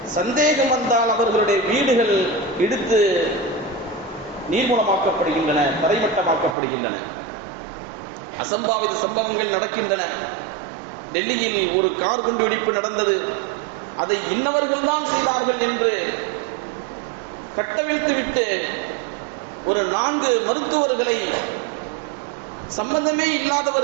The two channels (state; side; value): drops out; left; at 6.6 s